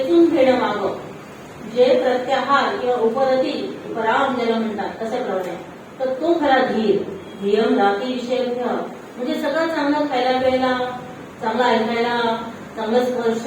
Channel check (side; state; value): both; identical; correlation 1.00